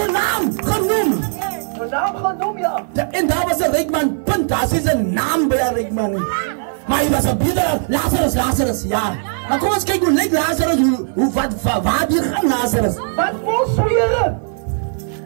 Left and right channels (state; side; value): silent; left; 56 dB below the other